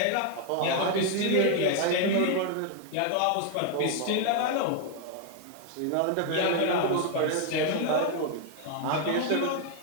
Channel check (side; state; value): both; different; correlation 0.00